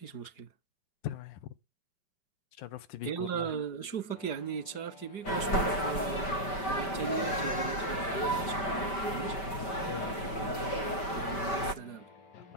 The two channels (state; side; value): late; right; 5.2 ms